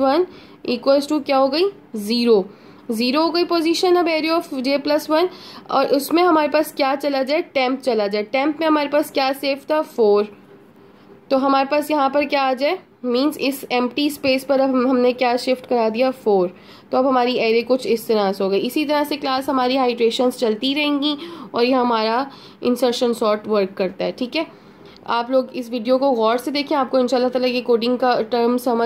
इक्वल्स टू क्या हो गई 0 हो गई पोजीशन। अब एरिया ऑफ j प्लस 1, और उसमें हमारे पास क्या चला जाए, टेम्प चला जाए। टेम्प में हमारे पास क्या सेफ था 4, तो हमारे पास यहाँ पर क्या आ जाए, मींस इस एम्प्टी स्पेस पर अब हमने क्या शिफ्ट करा दिया 4, तो अब हमारी एरे कुछ इस तरह से हो गई। इसी तरह से क्लास हमारी हाइड्रेशंस चलती रहेंगी और ये हमारा इंसर्शन सॉर्ट वर्क करता है। ठीक है, आप लोग इस वीडियो को गौर से देखें, आपको इंशाल्लाह ताला ये कोडिंग का टर्म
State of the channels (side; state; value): both; identical; correlation 1.00